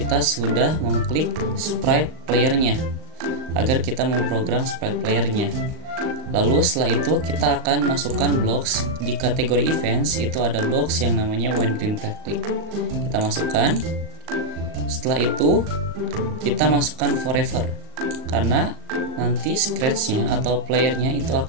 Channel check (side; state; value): left; late; 38 ms